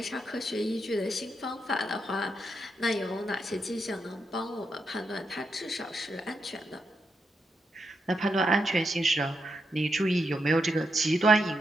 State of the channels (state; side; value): normal; both; correlation 0.83